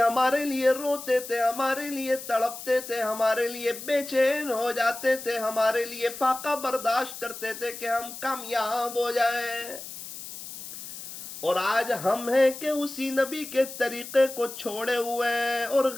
ہمارے لیے روتے تھے، ہمارے لیے تڑپتے تھے، ہمارے لیے بے چین ہو جاتے تھے، ہمارے لیے فاقہ برداشت کرتے تھے کہ ہم کامیاب ہو جائیں، اور آج ہم ہیں کہ اسی نبی کے طریقے کو چھوڑے ہوئے اور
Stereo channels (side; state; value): left; noise; hiss, 11 dB below the sound